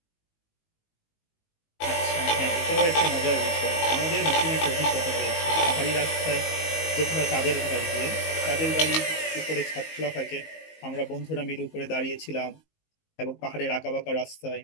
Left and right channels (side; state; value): right; late; 19 ms